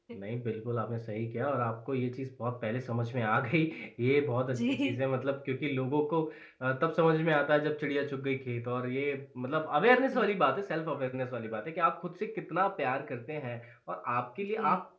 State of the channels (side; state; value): both; identical; correlation 1.00